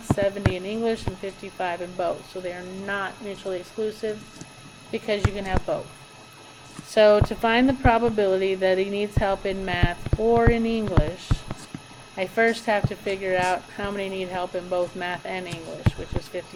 70 in English, and 55 in both. So they are not mutually exclusive because you can have both. So to find the probability that he needs help in math or in English, I first have to figure out how many need help in both math and English, which is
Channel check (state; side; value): identical; both; correlation 1.00